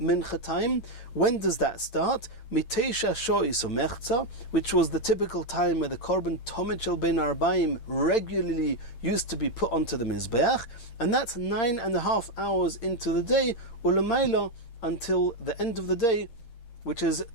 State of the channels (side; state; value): right; late; 8.8 ms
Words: time. When does that start? Mitesha Shois Umechza, which was the typical time where the Korban Tomid Shel Bein Arbaim regularly used to be put onto the Mizbeach. And that's 9.5 hours into the day, Ulamaila, until the end of the day, which is